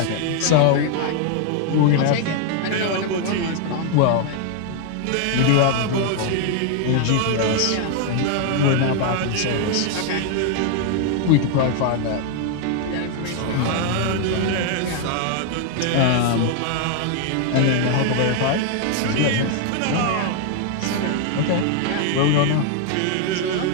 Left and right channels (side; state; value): both; different; correlation 0.00